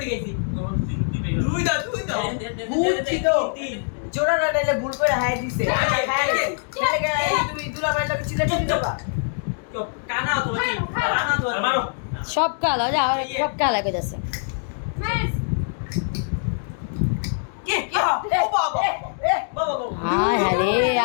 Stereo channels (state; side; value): silent; right; digital silence